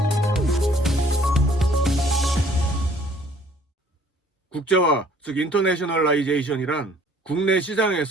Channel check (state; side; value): normal; both; correlation 0.58